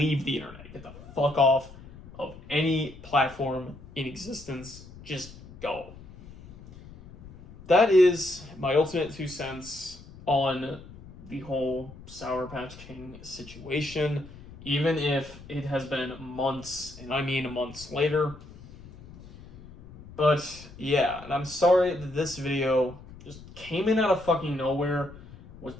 the internet. Get the fuck off of any platform in existence, just go. That is my ultimate 2 cents on the whole SourPatchKing situation, even if it has been months, and I mean months later. But yeah, and I'm sorry that this video just came in out of fucking nowhere, was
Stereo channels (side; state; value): left; noise; rumble, 18 dB below the sound